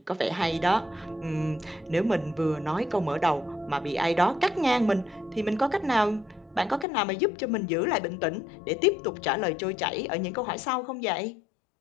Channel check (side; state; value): right; drops out; at 6.9 s